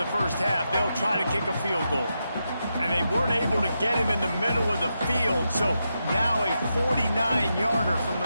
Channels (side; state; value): both; inverted; correlation -0.86